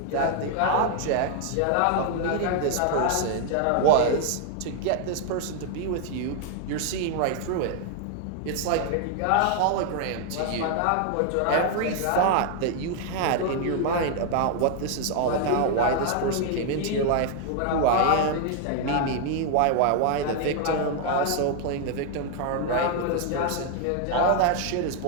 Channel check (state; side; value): different; both; correlation 0.00